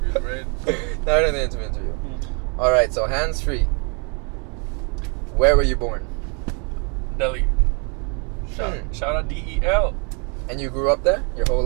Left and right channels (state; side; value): quieter; left; 36.5 dB